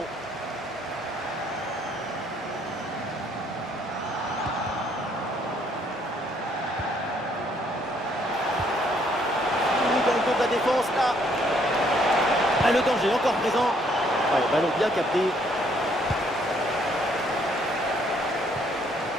Ah, le danger encore présent. Ouais, ballon bien capté.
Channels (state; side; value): normal; both; correlation 0.67